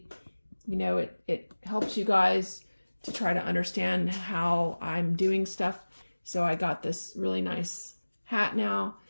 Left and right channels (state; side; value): inverted; both; correlation -1.00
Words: you know, it helps you guys to try to understand how I'm doing stuff. So I got this really nice hat now,